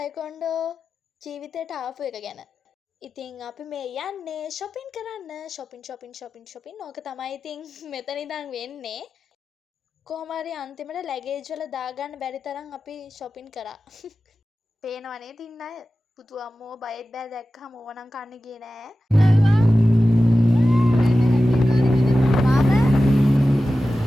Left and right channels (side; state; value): both; normal; correlation 0.94